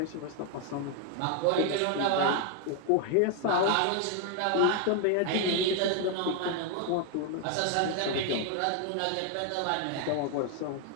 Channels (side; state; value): both; different; correlation 0.00